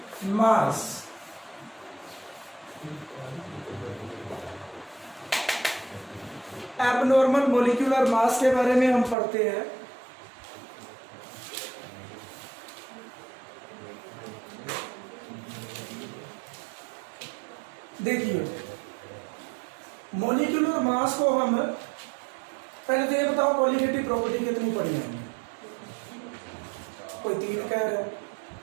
mass. Abnormal molecular mass के बारे में हम पढ़ते हैं। देखिए मॉलिक्यूलर मास को हम पहले तो ये बताओ क्वालिटेटिव प्रॉपर्टी कितनी पढ़ी है हमने? कोई 3 कह रहा है,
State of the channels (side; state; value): left; drops out; at 9.2 s